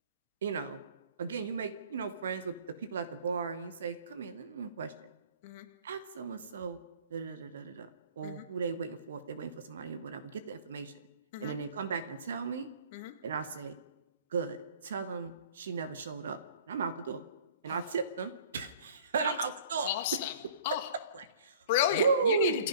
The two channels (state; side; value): inverted; both; correlation -0.48